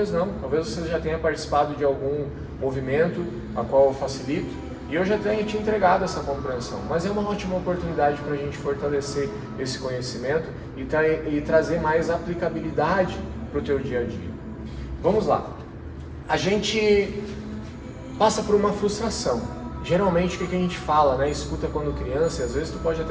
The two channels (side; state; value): both; identical; correlation 1.00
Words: não. Talvez você já tenha participado de algum movimento a qual eu facilito, e eu já tenho te entregado essa compreensão, mas é uma ótima oportunidade para a gente fortalecer esse conhecimento e trazer mais aplicabilidade para o teu dia a dia. Vamos lá. A gente passa por uma frustração. Geralmente o que a gente fala, né? Escuta quando criança, e às vezes tu pode